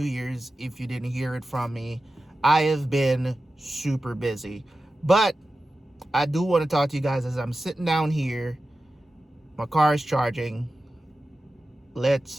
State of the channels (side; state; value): both; normal; correlation 0.93